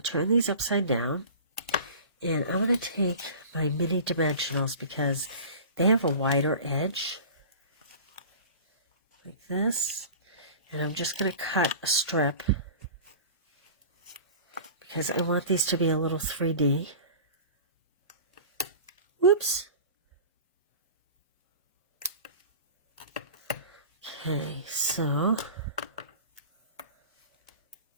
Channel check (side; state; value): both; inverted; correlation -0.38